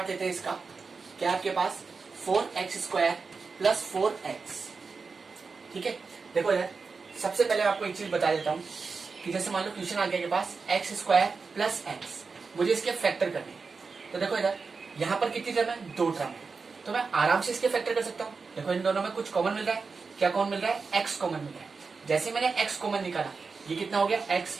लेते हैं इसका। क्या आपके पास 4x² प्लस 4x, ठीक है। देखो यार, सबसे पहले आपको एक चीज बता देता हूं कि जैसे मान लो क्वेश्चन आ गया के पास x² प्लस x, मुझे इसके फैक्टर करने हैं। तो देखो इधर, यहाँ पर कितनी टर्म है, 2 टर्म है, तो मैं आराम से इसके फैक्टर कर सकता हूँ। देखो इन दोनों में कुछ कॉमन मिल रहा है। क्या कॉमन मिल रहा है, x कॉमन मिल रहा है। जैसे मैंने x कॉमन निकाला, ये कितना हो गया, x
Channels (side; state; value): left; quieter; 4.7 dB